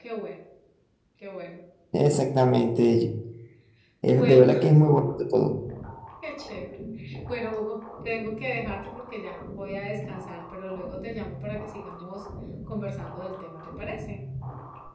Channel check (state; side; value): identical; both; correlation 1.00